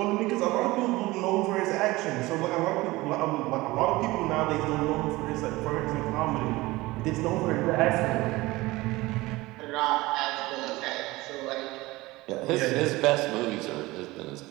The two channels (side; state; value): left; quieter; 20.2 dB